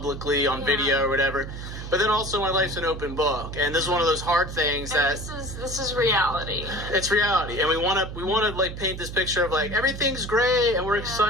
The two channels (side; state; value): right; noise; hum, 9 dB below the sound